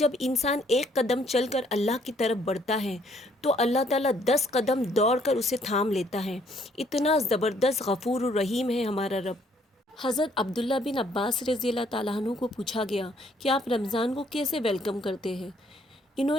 انسان ایک قدم چل کر اللہ کی طرف بڑھتا ہے تو اللہ تعالیٰ 10 قدم دوڑ کر اسے تھام لیتا ہے۔ اتنا زبردست غفور الرحیم ہے ہمارا رب۔ حضرت عبداللہ بن عباس رضی اللہ تعالیٰ عنہ کو پوچھا گیا کہ آپ رمضان کو کیسے ویلکم کرتے ہیں؟ انہوں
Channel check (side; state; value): both; normal; correlation 0.65